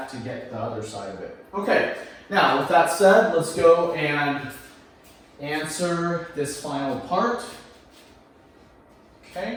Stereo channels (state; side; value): identical; both; correlation 1.00